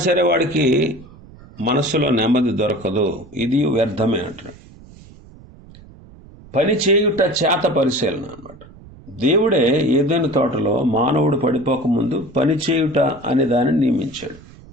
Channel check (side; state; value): right; noise; rumble, 21 dB below the sound